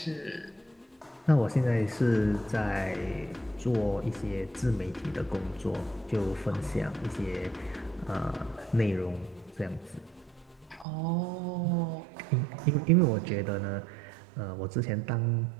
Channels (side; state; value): left; drops out; at 10.9 s